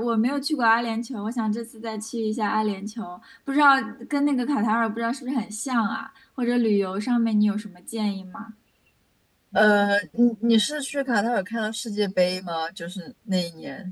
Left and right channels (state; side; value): identical; both; correlation 1.00